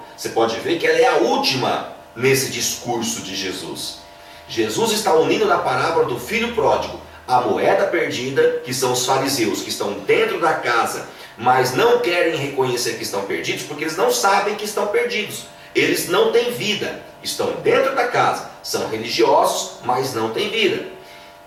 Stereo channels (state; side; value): identical; both; correlation 1.00